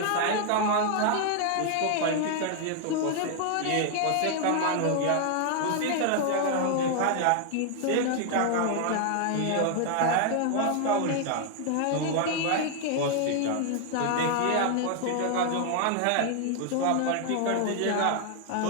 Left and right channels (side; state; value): both; different; correlation 0.00